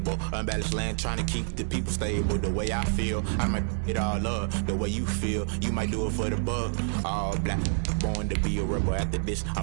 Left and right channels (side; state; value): left; silent; digital silence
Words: Unbalanced land, trying to keep the people stable. The way I feel, I might it all up. The way you feel, you might do it for the buck. All black, born to be a rebel. After this, I